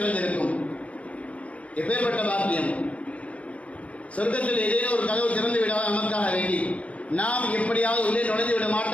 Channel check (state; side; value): late; right; 0.065 ms